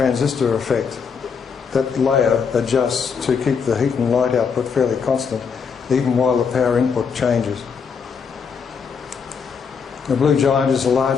effect. That layer adjusts to keep the heat and light output fairly constant, even while the power input changes. The blue giant is a large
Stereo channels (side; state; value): right; quieter; 6.1 dB